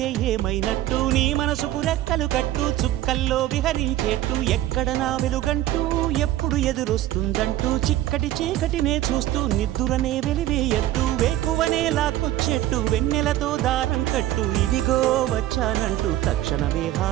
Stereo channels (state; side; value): quieter; left; 14.1 dB